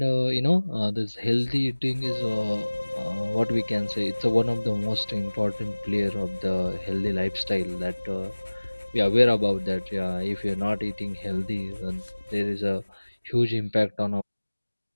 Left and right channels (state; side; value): inverted; both; correlation -1.00